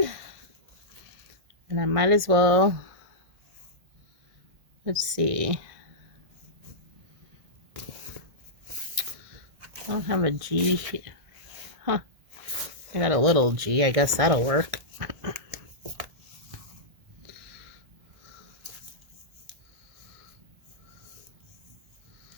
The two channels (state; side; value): late; left; 1.6 ms